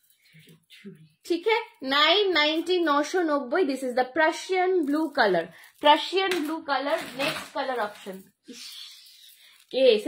ठीक है, 990, 990। This is the Prussian blue colour, Prussian blue colour. Next colour option কে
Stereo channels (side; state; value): both; identical; correlation 1.00